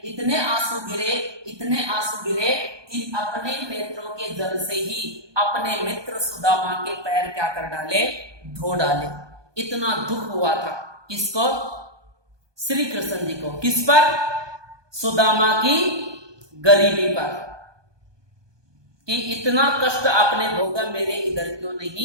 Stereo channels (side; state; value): left; late; 1.2 ms